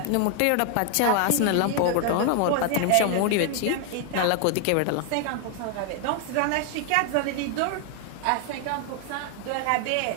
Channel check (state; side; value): different; both; correlation 0.00